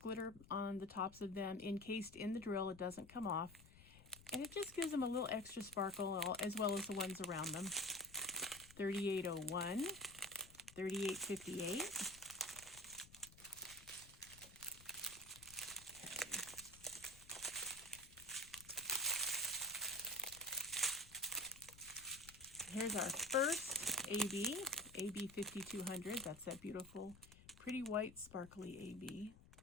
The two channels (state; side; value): noise; left; rumble, 20 dB below the sound